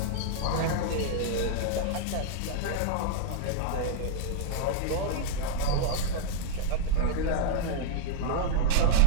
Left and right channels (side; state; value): both; different; correlation -0.03